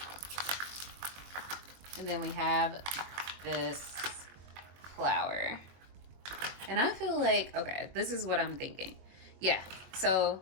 And then we have this flower. And I feel like, okay, this is what I'm thinking. Yeah,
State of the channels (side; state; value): left; late; 22 ms